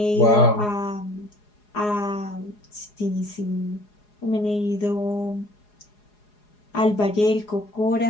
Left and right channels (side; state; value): right; late; 4.8 ms